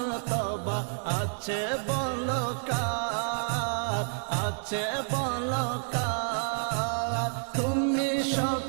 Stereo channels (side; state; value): left; silent; digital silence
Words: আছে বলো কার, আছে বলো কার। তুমি